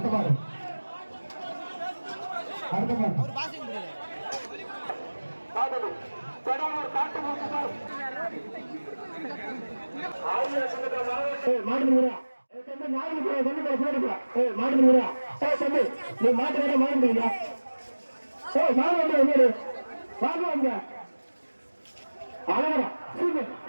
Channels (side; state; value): both; inverted; correlation -1.00